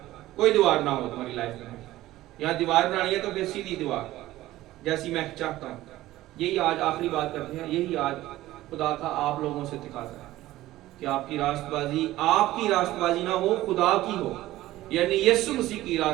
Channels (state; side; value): quieter; left; 16.0 dB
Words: کوئی دیوار نہ ہو تمہاری لائف میں. یہاں دیوار بنانی ہے تو پھر سیدھی دیوار جیسی میں چاہتا ہوں. یہی آج آخری بات کرتے ہیں. یہی آج خدا کا آپ لوگوں سے تقاضا ہے کہ آپ کی راست بازی نہ ہو، خدا کی ہو. یعنی یسوع مسیح کی